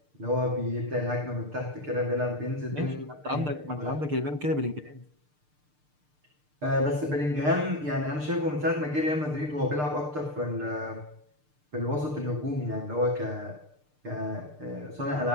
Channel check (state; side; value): late; left; 6.7 ms